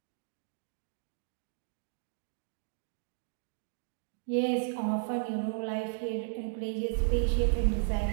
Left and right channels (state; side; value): silent; left; digital silence